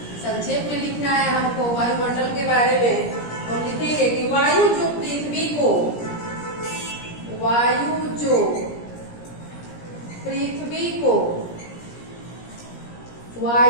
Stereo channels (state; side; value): late; right; 17 ms